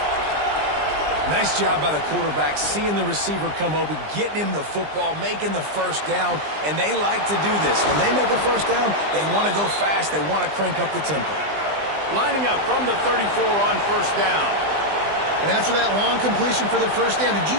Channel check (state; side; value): late; left; 20 ms